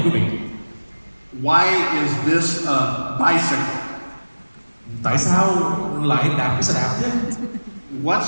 quý vị. Why is this a bicycle? Tại sao lại đạp cái xe đạp chứ?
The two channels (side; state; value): both; inverted; correlation -1.00